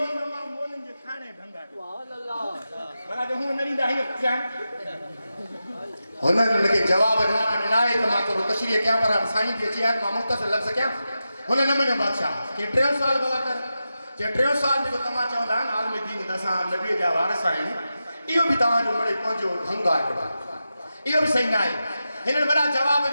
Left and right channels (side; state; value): both; inverted; correlation -0.91